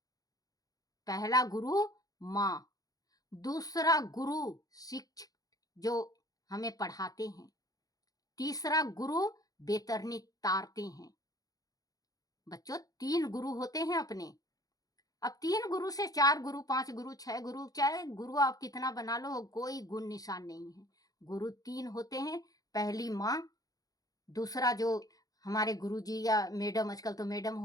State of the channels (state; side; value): late; right; 0.18 ms